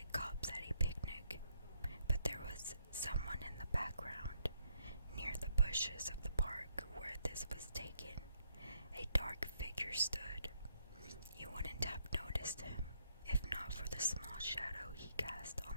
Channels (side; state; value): both; inverted; correlation -0.72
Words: cups at a picnic. But there was someone in the background, near the bushes of the park where this was taken. A dark figure stood. You wouldn't have noticed him, if not for the small shadow he cast on